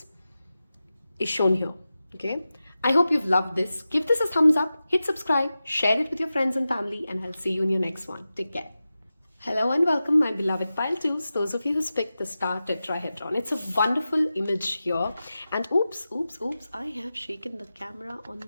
is shown here. Okay, I hope you've loved this. Give this a thumbs up, hit subscribe, share it with your friends and family, and I'll see you in your next one. Take care. Hello and welcome, my beloved pile 2s, those of you who picked the star tetrahedron. It's a wonderful image here, and oops, I have shaken the camera on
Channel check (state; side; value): inverted; both; correlation -0.93